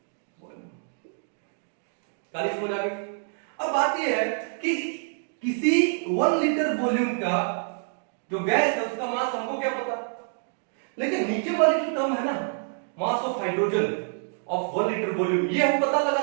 volume. काली समझ आ गई? अब बात यह है कि किसी 1 लीटर वॉल्यूम का जो गैस है उसका मास हमको क्या पता, लेकिन नीचे वाली जो टर्म है ना, मास of hydrogen of 1 litre volume, ये हम पता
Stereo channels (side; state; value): left; silent; 60 dB below the other